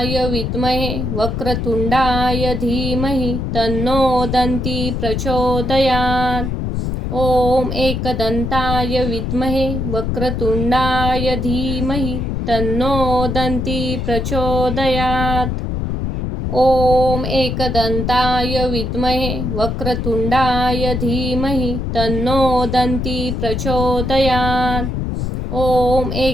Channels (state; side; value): noise; left; rumble, 2 dB below the sound